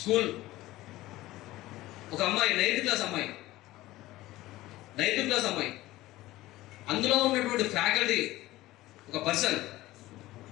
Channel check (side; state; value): right; quieter; 17.2 dB